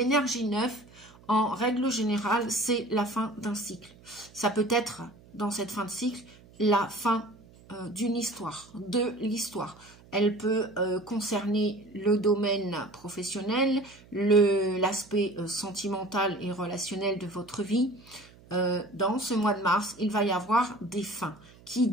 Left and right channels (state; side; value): noise; right; hum, 24 dB below the sound